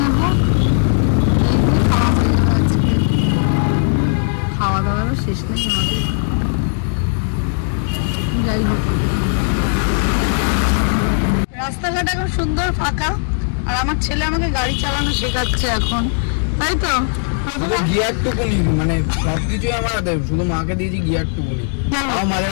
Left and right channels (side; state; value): right; silent; digital silence